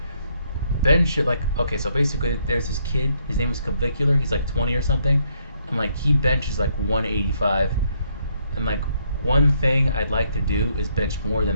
Ben should like okay, so basically there's this kid, his name is Clavicular, he's like 20 or something, and like he benches like 185, and like one thing I'd like to do is bench more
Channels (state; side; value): inverted; both; correlation -0.72